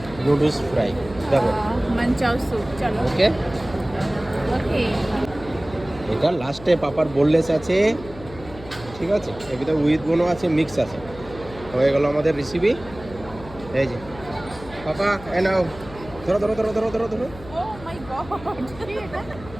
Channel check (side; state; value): left; noise; hum, 16 dB below the sound